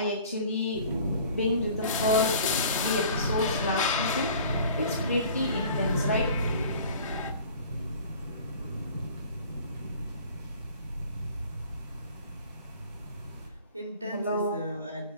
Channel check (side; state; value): both; inverted; correlation -0.47